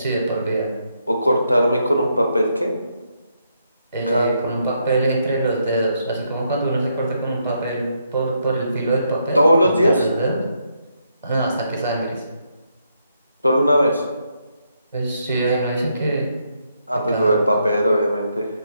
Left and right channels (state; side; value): inverted; both; correlation -0.78